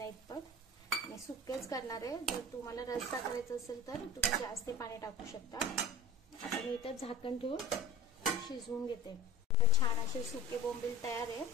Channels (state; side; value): normal; both; correlation 0.38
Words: इतपत। मी सुकेच करणार आहे, जर तुम्हाला रस्सा करायचा असेल तर तुम्ही जास्त पाणी टाकू शकता। आता मी इथे झाकण ठेवून शिजवून घेते। आता छान असे सुके बोंबील तयार आहे।